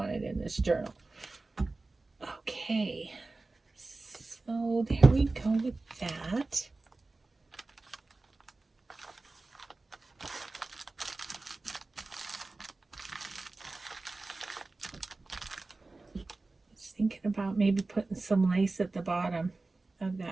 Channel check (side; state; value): left; quieter; 3.4 dB